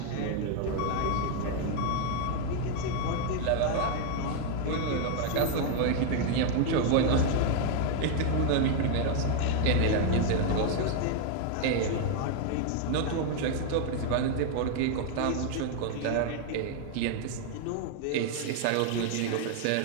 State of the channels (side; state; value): both; different; correlation 0.00